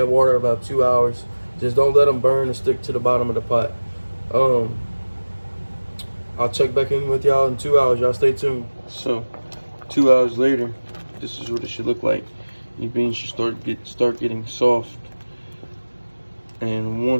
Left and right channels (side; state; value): both; inverted; correlation -1.00